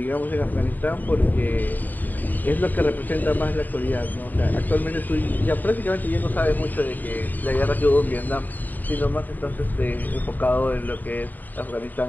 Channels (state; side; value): late; right; 0.087 ms